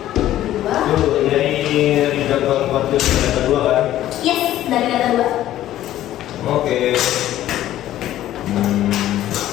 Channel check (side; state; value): right; quieter; 13.3 dB